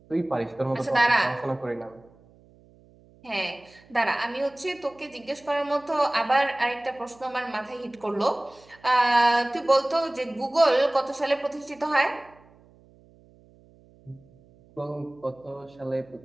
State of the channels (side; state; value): right; noise; hum, 28 dB below the sound